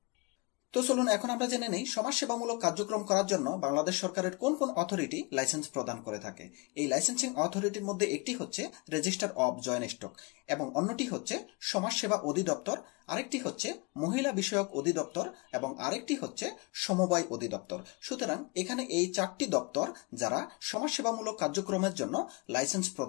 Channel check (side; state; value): right; quieter; 28.8 dB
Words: তো চলুন এখন আমরা জেনে নেই সমাজসেবামূলক কার্যক্রম করার জন্য বাংলাদেশ সরকারের কোন কোন অথরিটি লাইসেন্স প্রদান করে থাকে। এই লাইসেন্সিং অথরিটির মধ্যে একটি হচ্ছে রেজিস্টার অব জয়েন্ট স্টক এবং অন্যটি হচ্ছে সমাজসেবা অধিদপ্তর, আরেকটি হচ্ছে মহিলা বিষয়ক অধিদপ্তর এবং আরেকটি হচ্ছে সমবায় অধিদপ্তর। সুতরাং এখানে এই চারটি দপ্তর যারা সমাজসেবামূলক কার্যক্রমের জন্য লাইসেন্স